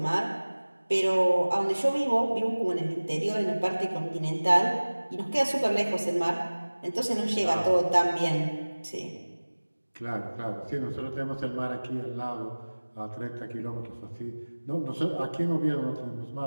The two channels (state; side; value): inverted; both; correlation -1.00